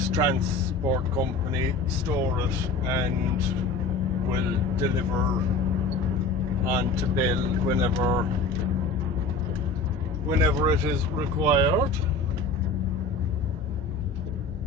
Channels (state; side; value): quieter; right; 3.6 dB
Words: transport company store it and will deliver on to Bell whenever it is required.